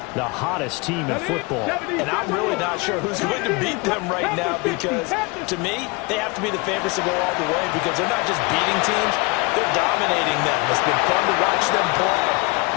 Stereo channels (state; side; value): quieter; right; 26.7 dB